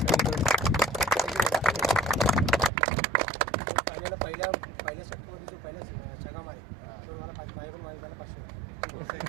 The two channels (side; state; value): left; drops out; at 2.7 s